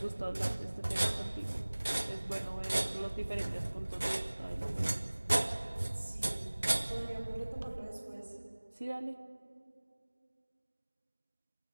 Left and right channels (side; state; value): both; inverted; correlation -1.00